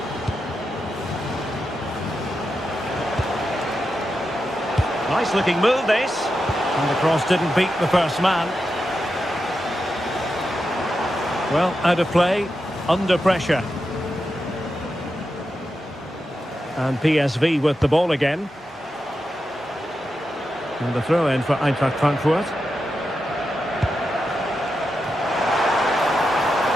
Nice looking move, this. And the cross didn't beat the first man. Well, out of play, under pressure. And PSV with the ball again. And the throw in for Eintracht Frankfurt.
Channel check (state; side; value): normal; both; correlation 0.88